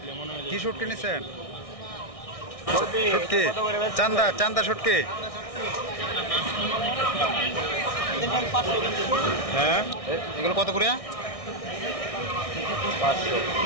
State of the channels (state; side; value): late; right; 1.6 ms